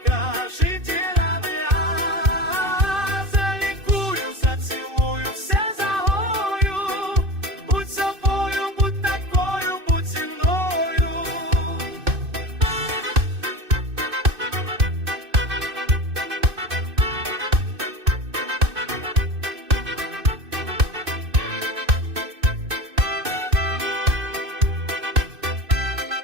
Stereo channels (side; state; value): left; late; 2.6 ms